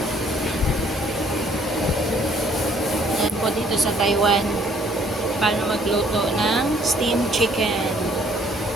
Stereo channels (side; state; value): both; normal; correlation 0.62